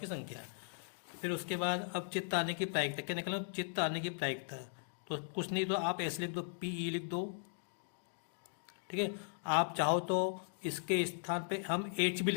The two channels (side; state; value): right; silent; digital silence